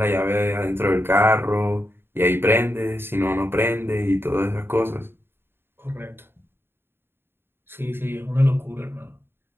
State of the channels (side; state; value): left; late; 0.11 ms